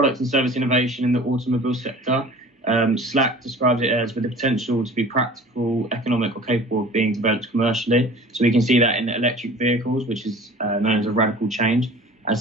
and service innovation in the automobile sector, Slack describes it as with the potential to be practical, economic or capable of being developed commercially. So we can see that in electric vehicles, which is known as a radical change,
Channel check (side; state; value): both; normal; correlation 0.44